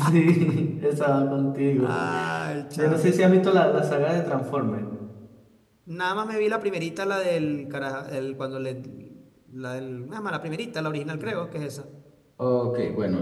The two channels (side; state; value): both; identical; correlation 1.00